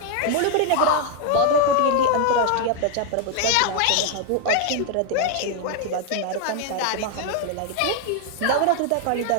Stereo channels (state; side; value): different; both; correlation 0.00